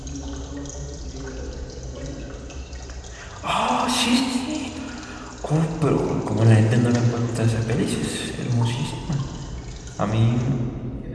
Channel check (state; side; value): identical; both; correlation 1.00